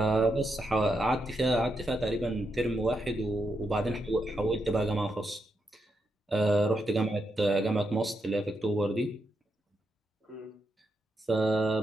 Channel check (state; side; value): normal; both; correlation 0.83